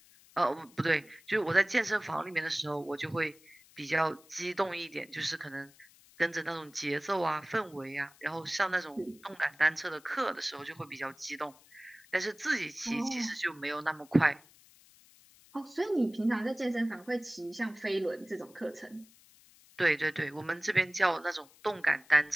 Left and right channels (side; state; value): left; noise; hiss, 26 dB below the sound